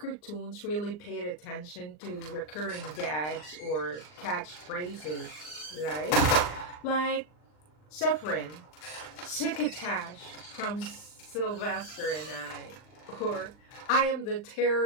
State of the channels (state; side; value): late; right; 39 ms